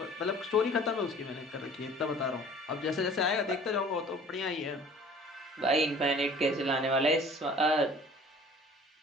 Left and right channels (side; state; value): both; normal; correlation 0.48